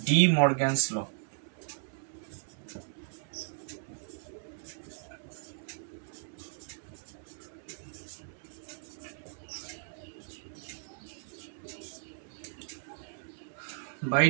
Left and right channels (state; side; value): silent; left; 54 dB below the other